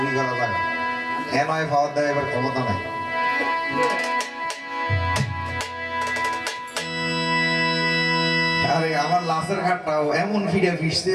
করা জায়গা, নয় পাওয়ার দেয় এবার ক্ষমতা নাই। আরে আমার লাশের ঘাটটাও এমন ফিরে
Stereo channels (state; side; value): identical; both; correlation 1.00